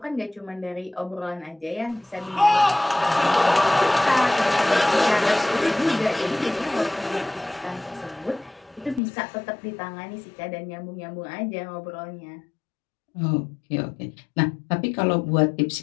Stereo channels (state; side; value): drops out; right; at 9.0 s